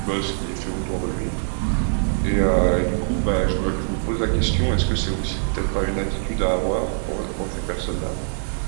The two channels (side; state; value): left; silent; digital silence